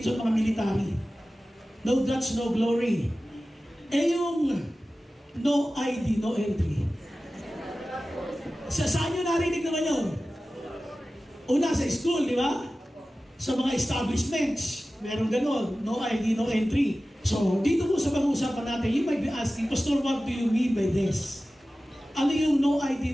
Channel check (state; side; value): normal; both; correlation 0.95